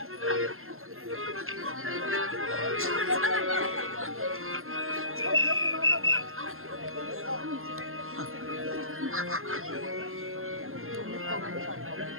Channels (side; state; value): left; late; 0.61 ms